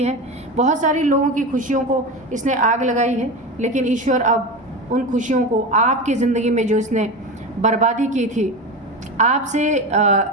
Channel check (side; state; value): both; normal; correlation 0.23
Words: है। बहुत सारी लोगों की खुशियों को इसने आग लगाई है, लेकिन ईश्वर अब उन खुशियों को आपकी ज़िंदगी में जो इसने बर्बादी की थी, आपसे